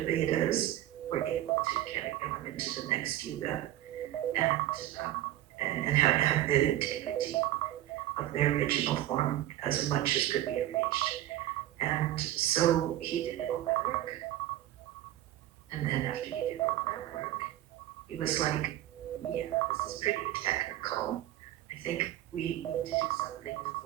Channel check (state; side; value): quieter; left; 13.8 dB